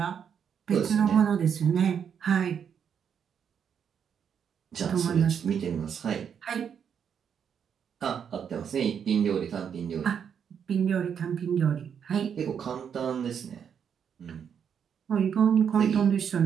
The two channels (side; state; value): left; quieter; 7.7 dB